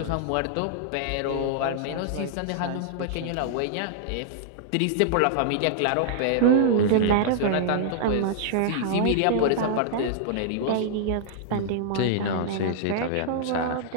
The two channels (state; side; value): different; both; correlation -0.01